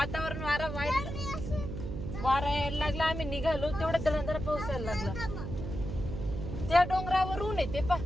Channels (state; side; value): noise; right; hum, 6 dB below the sound